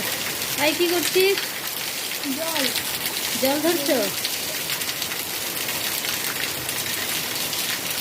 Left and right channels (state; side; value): identical; both; correlation 1.00